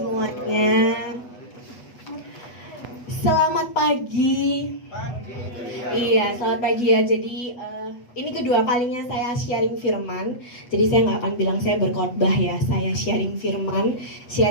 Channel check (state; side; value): late; right; 8.2 ms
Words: Selamat pagi. Iya, selamat pagi ya. Jadi ini kedua kalinya saya sharing firman. Jadi saya nggak akan bilang saya berkhotbah ya. Saya sharing firman,